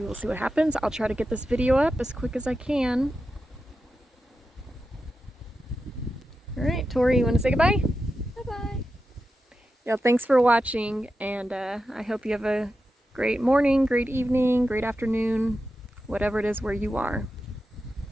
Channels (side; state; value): both; normal; correlation 0.90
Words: will see what happens. I'll try to get this video up as quick as I can. Alright, Tori, you want to say goodbye? Bye-bye. Yeah, thanks for watching, and I hope you have a great morning, great evening, great afternoon, whatever it is where you are.